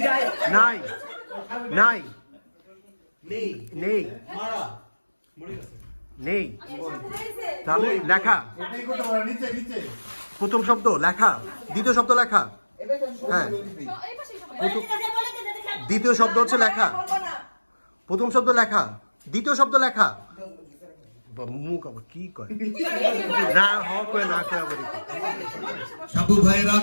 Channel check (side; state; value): both; inverted; correlation -1.00